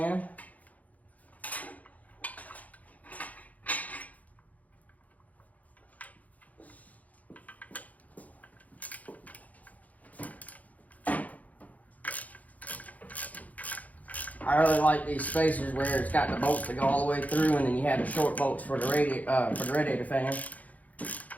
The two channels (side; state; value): right; late; 0.075 ms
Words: I really like these spacers where it's got the bolts that go all the way through, and then you have the short bolts for the radiator fan.